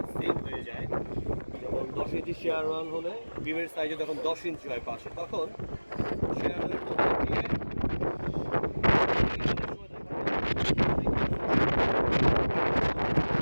সেম হয়ে যায়। যেমন 10 ইঞ্চি শেয়ার ওয়ান হলে বিমের সাইজে যখন 10 ইঞ্চি হয় পাশে, তখন শেয়ারের মধ্যে দিয়ে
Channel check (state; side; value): inverted; both; correlation -1.00